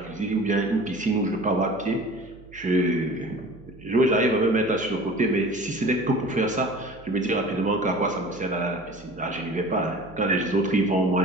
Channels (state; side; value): noise; right; hum, 21 dB below the sound